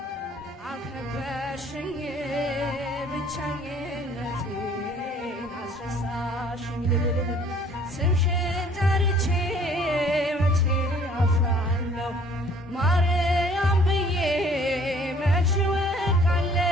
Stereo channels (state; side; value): normal; both; correlation 0.56